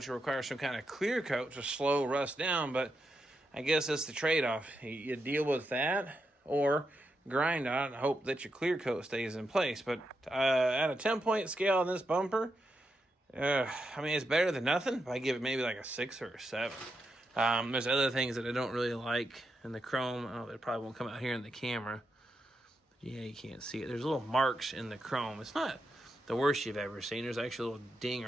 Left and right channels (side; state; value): both; normal; correlation 0.84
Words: will require some kind of clear coat to slow rust down, but I guess that's the trade-off. You deal with that or grind on it and hope that your clear coat stays in place. But at a 10-point scale on this bumper, I mean, it's better than nothing. I give it maybe like a 6 or a 7. There's other things that I don't really like in the chrome. It probably won't come out here in the camera. But yeah, you can't see it. There's little marks in the chrome. It's not the worst you've ever seen. There's actually a little ding